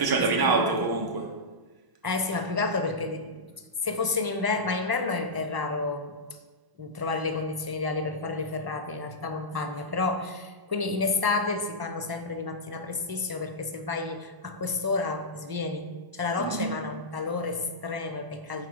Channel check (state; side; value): late; left; 1.0 ms